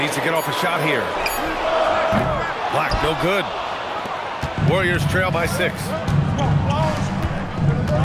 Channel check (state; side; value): identical; both; correlation 1.00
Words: to get off a shot here. Black, no good. Warriors trail by 6.